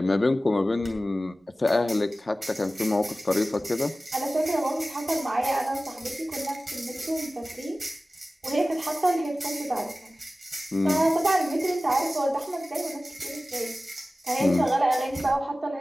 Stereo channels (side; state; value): both; normal; correlation 0.96